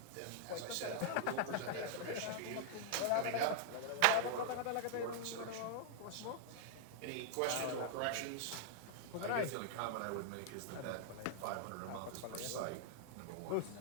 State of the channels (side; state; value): both; different; correlation -0.01